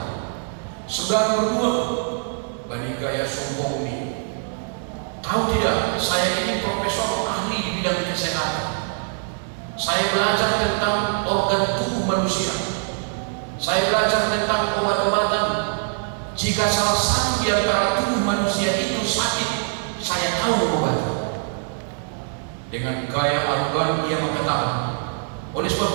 Saudara berdua bagi gaya sombong ini tahu tidak saya ini profesor ahli di bidang kesehatan. Saya belajar tentang organ tubuh manusia. Saya belajar tentang obat-obatan. Jika salah satu di antara tubuh manusia itu sakit, saya tahu obatnya. Dengan gaya arogan ia mengatakan, oleh sebab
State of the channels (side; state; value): left; silent; digital silence